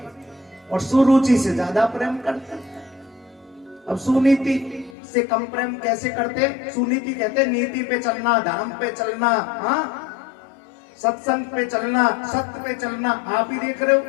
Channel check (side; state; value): right; drops out; at 5.0 s